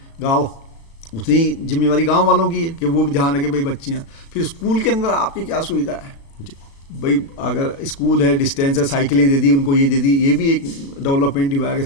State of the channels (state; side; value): late; right; 36 ms